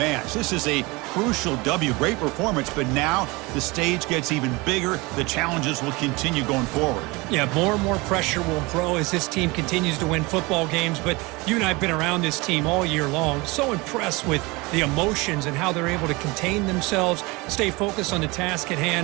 This is a crucial W. Great performance, but now the stage gets even bigger. The challenges will continue going forward. Yeah, more and more pressure will grow as this team continues to win football games, but you and I have been around this team all year long. So impressed with the emotions and how they're able to contain themselves, stay focused on the task at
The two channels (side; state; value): left; quieter; 24.3 dB